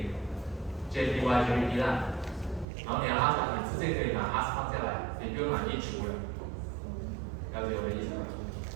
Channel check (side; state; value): left; drops out; at 2.7 s